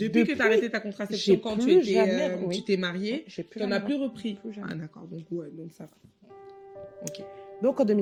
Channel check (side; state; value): both; identical; correlation 1.00